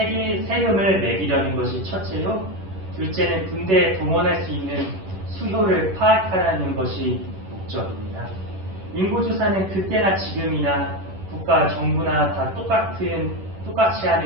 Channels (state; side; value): late; left; 11 ms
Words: 매기려는 것이 첫째요. 둘째는 군대에 동원할 수 있는 수요를 파악하라는 것이 목적입니다. 인구조사는 그때나 지금이나 국가, 정부나 다 똑같이